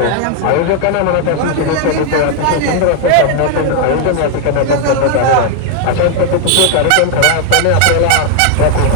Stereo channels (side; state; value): both; different; correlation 0.00